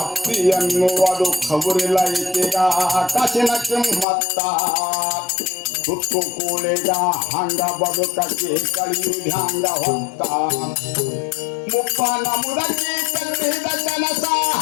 ಅತ್ತಿ ಅನ್ನುವುದು ಖಬರಿಲ್ಲ ಈಕೆಗ ಕಾಸಿನ ಕಿಮ್ಮತ್ತ. ತುತ್ತು ಕೂಳಿಗ ಹಂಗ ಬದುಕಿ ಕಳಿಯುವುದು ಹಂಗ ಹೊತ್ತ. ಮುಪ್ಪನ ಮುದಕಿ ಕಟ್ಟಿದ ಕನಸ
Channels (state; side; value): drops out; right; at 4.0 s